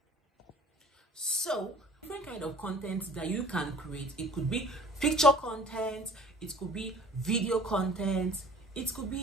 So different kind of content that you can create. It could be picture content, it could be video content, it could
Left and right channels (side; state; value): both; normal; correlation 0.47